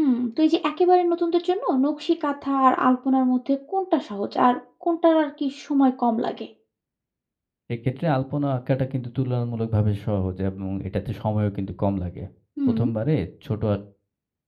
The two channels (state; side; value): identical; both; correlation 1.00